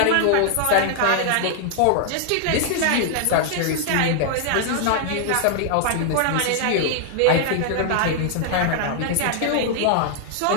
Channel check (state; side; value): different; both; correlation 0.00